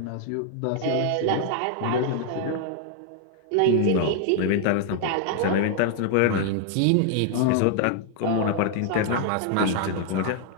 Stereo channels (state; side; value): different; both; correlation 0.00